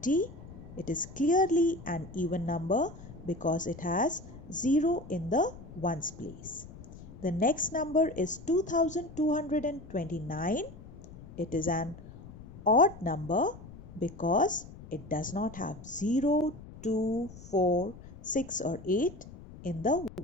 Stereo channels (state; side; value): noise; left; rumble, 16 dB below the sound